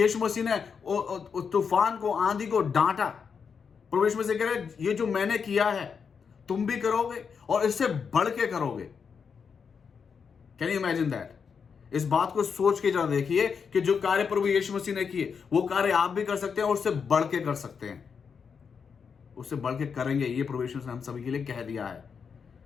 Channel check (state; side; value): quieter; right; 6.2 dB